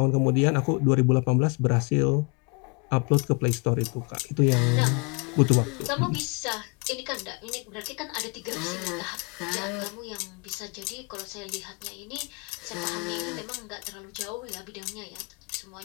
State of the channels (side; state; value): right; quieter; 31.8 dB